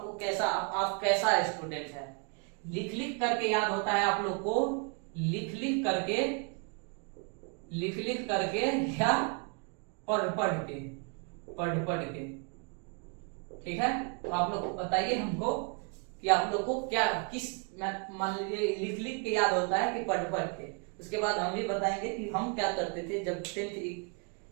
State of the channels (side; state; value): left; quieter; 36.9 dB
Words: को कैसा, आप कैसा स्टूडेंट है। लिख लिख करके याद होता है आप लोग को, लिख लिख करके या पढ़ पढ़ के। ठीक है, तो आप लोग बताइए हमको कि आप लोग को क्या, किस, मान लीजिए लिख लिख के याद होता है कि पढ़ के। उसके बाद हम भी बताएंगे कि हम क्या करते थे जब 10th